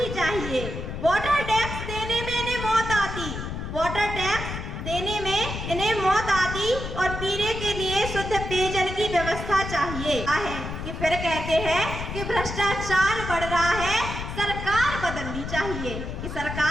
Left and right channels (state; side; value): noise; left; rumble, 6 dB below the sound